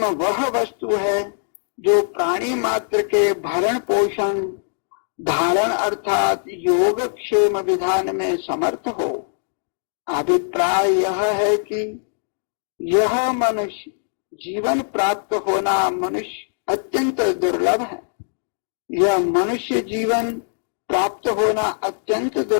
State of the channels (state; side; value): silent; right; digital silence